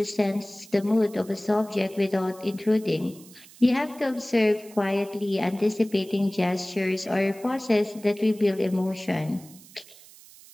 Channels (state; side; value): noise; right; hiss, 22 dB below the sound